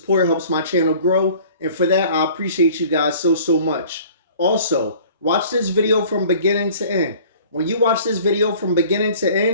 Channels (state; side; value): inverted; both; correlation -0.49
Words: helps my channel grow. And for that, I appreciate you guys so much. Also, watch this video from beginning to end. When you watch this video from beginning to